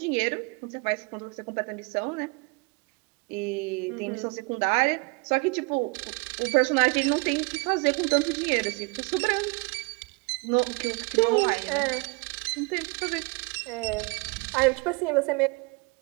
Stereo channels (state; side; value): quieter; left; 29.0 dB